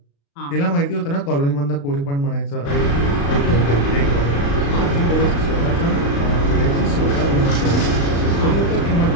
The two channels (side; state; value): right; late; 35 ms